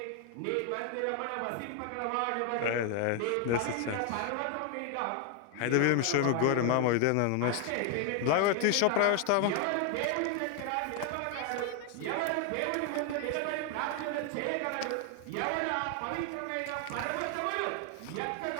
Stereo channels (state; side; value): different; both; correlation 0.00